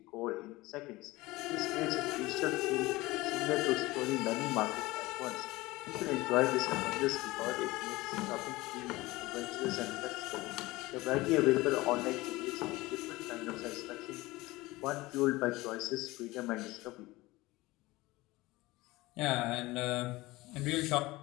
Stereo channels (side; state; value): right; quieter; 20.2 dB